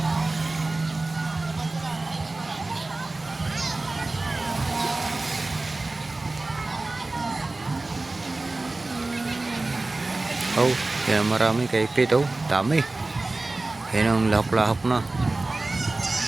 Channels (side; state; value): left; quieter; 3.1 dB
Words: Oh, yan marami kay Pete. Oh, dami. Yan ang lahap-lahap na.